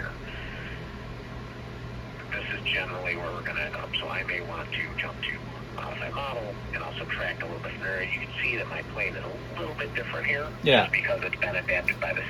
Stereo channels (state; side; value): identical; both; correlation 1.00